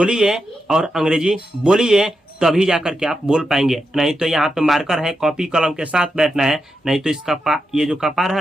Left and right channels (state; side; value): normal; both; correlation 0.86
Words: और अंग्रेजी बोलिए, तभी जाकर के आप बोल पाएंगे। नहीं तो यहाँ पे मार्कर है, कॉपी कलम के साथ बैठना है, नहीं तो इसका ये जो कपार